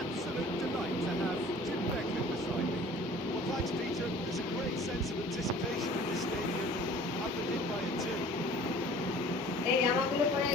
এই জামাগুলো পরে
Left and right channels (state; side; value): normal; both; correlation 0.48